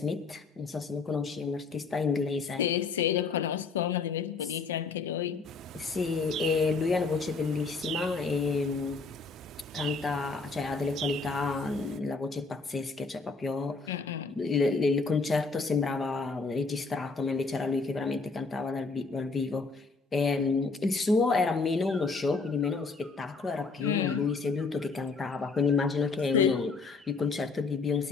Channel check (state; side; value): quieter; right; 4.2 dB